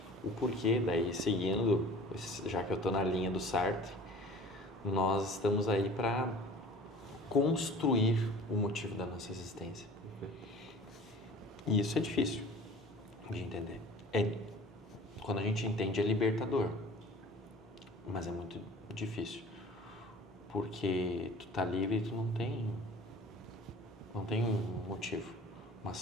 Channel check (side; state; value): both; normal; correlation 0.44